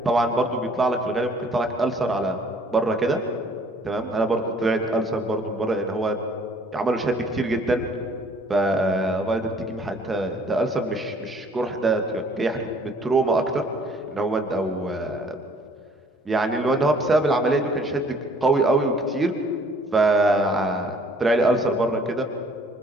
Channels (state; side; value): normal; both; correlation 0.57